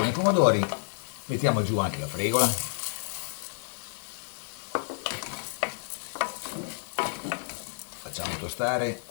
e i pomodori, mettiamo giù anche la fregola, facciamo tostare,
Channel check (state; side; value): silent; right; digital silence